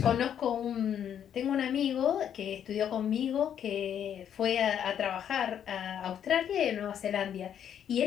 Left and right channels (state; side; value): quieter; right; 9.3 dB